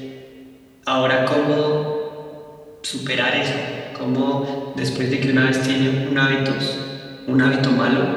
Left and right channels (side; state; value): both; identical; correlation 1.00